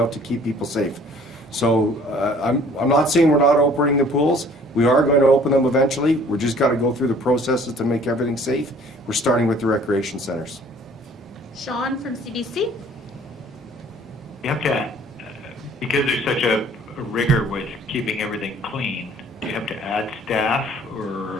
to keep people safe. So I'm not saying we're not opening the pools. We are going to open them eventually. We're just got to go through the processes to make everything safe. We're starting with the recreation centers. Sean from CBC. You have to, because there's such a rigor with keeping everything clean, do you have to add staff,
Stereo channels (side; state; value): both; normal; correlation 0.54